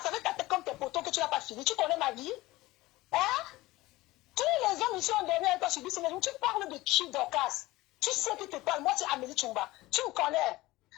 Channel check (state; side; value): quieter; right; 19.1 dB